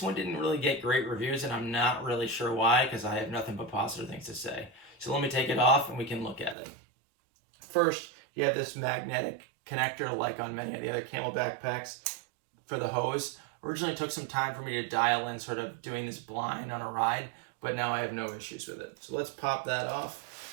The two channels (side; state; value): left; drops out; at 6.6 s